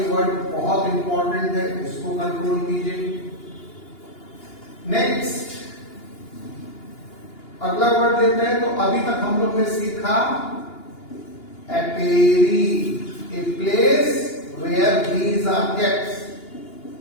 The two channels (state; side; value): late; right; 2.9 ms